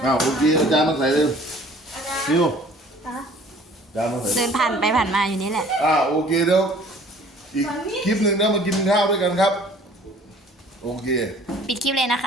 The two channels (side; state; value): both; normal; correlation 0.52